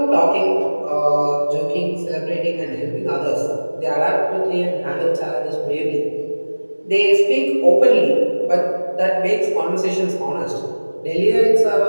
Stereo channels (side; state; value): both; inverted; correlation -1.00